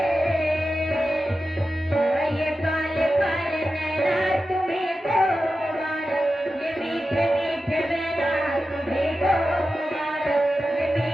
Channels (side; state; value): both; normal; correlation 0.92